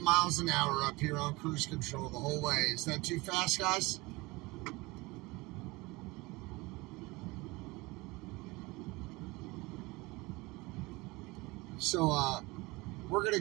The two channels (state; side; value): quieter; left; 23.1 dB